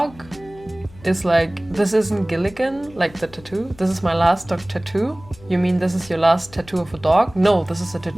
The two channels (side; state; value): left; noise; hum, 22 dB below the sound